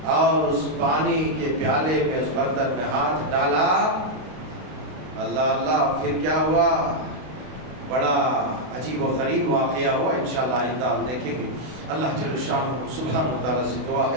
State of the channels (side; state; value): left; late; 32 ms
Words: اور اس پانی کے پیالے میں اس برتن میں ہاتھ ڈالا. اللہ اللہ, پھر کیا ہوا, بڑا عجیب و غریب واقعہ ہوا. انشاءاللہ آئندہ ہم دیکھیں گے. اللہ جل شانہ سبحانہ و تعالیٰ سے دعا